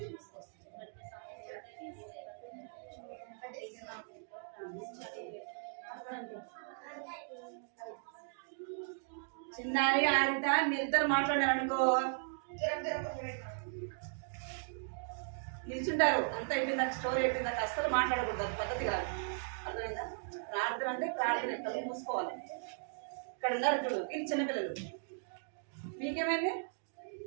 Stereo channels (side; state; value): left; silent; digital silence